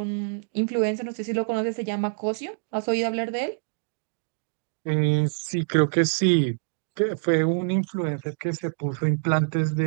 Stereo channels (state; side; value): silent; left; digital silence